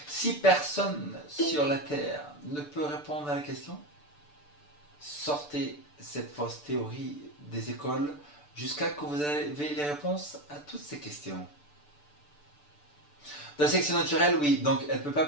Si personne sur la Terre ne peut répondre à la question, sortez cette fausse théorie des écoles jusqu'à ce que vous ayez les réponses à toutes ces questions. Dans la sélection naturelle, oui, donc elle ne peut pas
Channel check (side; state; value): right; late; 6.8 ms